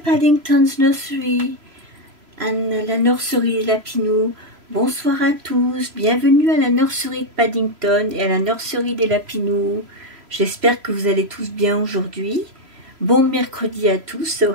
Nursery and la nurserie des Lapinous. Bonsoir à tous, bienvenue à la nurserie de Paddington et à la nurserie des Lapinous. J'espère que vous allez tous bien aujourd'hui. Bon mercredi à tous, so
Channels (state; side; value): late; left; 3.0 ms